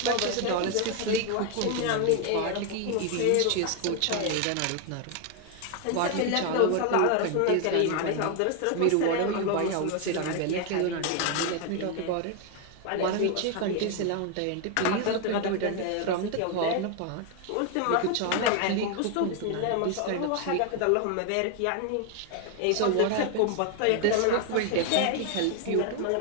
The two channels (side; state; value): both; different; correlation 0.01